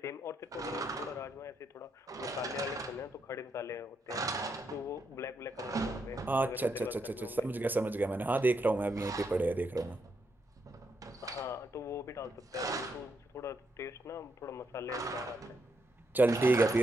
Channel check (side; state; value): both; normal; correlation 0.80